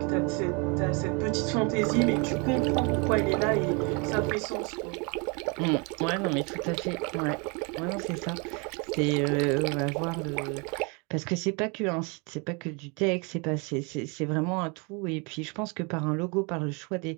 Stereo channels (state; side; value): quieter; left; 31.5 dB